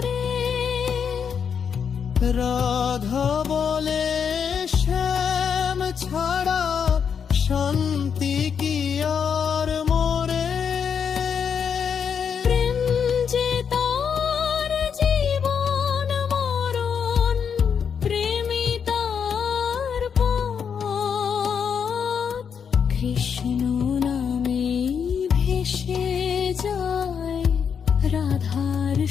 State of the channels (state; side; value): quieter; right; 7.0 dB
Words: রাধা বলে শ্যাম ছাড়া শান্তি কি আর মোরে। প্রেম যে তার জীবন মরণ, প্রেমী তার পথ। কৃষ্ণ নামে ভেসে যায় রাধার